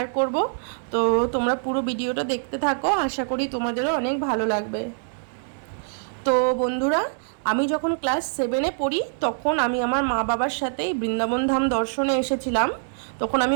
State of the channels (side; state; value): left; silent; digital silence